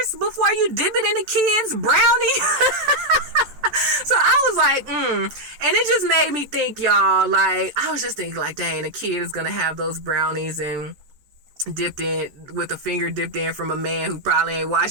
before you dip it in the kids' brownie? So I was like, and it just made me think, y'all, like, I was just thinking, like, dang, the kid is gonna have those brownies and dipped in with a finger dipped in from a man who probably ain't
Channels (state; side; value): late; left; 14 ms